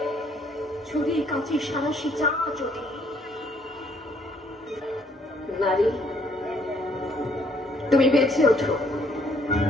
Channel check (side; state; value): both; normal; correlation 0.65